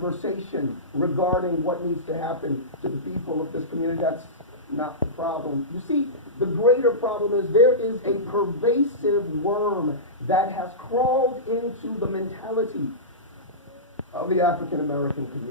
regarding what needs to happen to the people of this community. That's not the problem. You see, the greater problem is there is a pervasive worm that has crawled into the mentality of the African American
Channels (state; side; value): normal; both; correlation -0.19